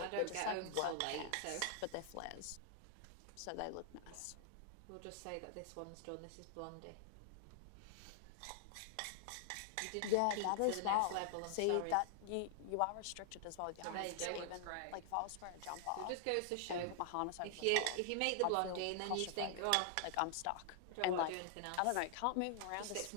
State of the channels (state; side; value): different; both; correlation 0.00